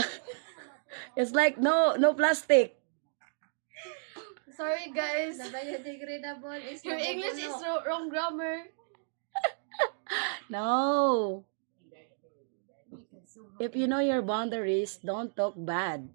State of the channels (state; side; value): silent; left; digital silence